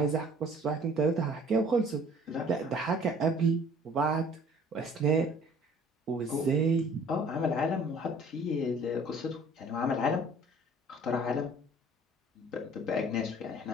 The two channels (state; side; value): normal; both; correlation 0.52